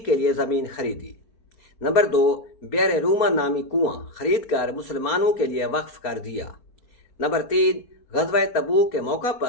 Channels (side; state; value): right; late; 4.1 ms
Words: کے لیے زمین خریدی۔ نمبر 2، بئر روما نامی کنواں خرید کر مسلمانوں کے لیے وقف کر دیا۔ نمبر 3، غزوہ تبوک کے موقع